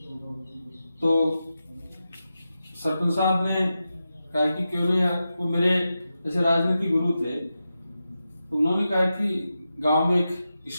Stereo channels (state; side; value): inverted; both; correlation -0.90